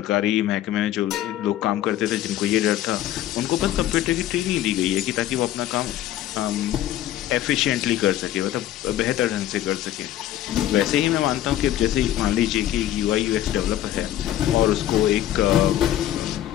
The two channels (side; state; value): right; quieter; 12.9 dB